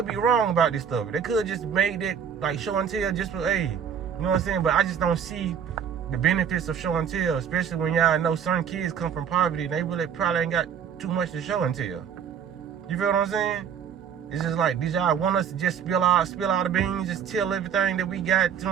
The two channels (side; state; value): left; quieter; 7.8 dB